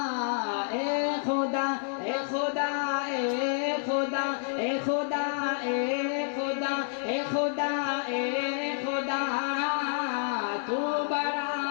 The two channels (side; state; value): right; silent; 59 dB below the other